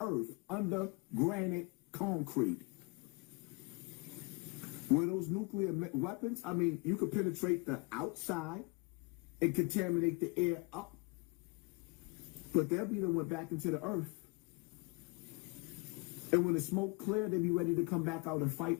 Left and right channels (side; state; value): right; quieter; 29.7 dB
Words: earth under granite concrete. Where those nuclear weapons, I mean, you could penetrate the outside and contaminate the air up, but they'll be the one back into the earth. And when the smoke clear, they'll be ready to come back out and fight